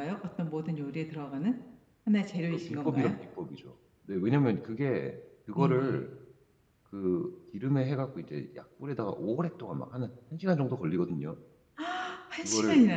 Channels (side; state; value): both; identical; correlation 1.00